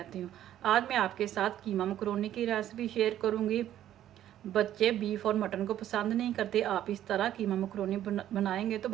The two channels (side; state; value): left; quieter; 11.9 dB